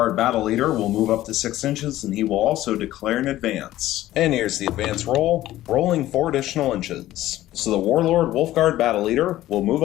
Battle Leader will move up to 6 inches, and he will also declare an advance. And here's the advance roll, rolling 4 additional inches. So the Warlord Wolfguard Battle Leader will move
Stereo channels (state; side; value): quieter; right; 14.8 dB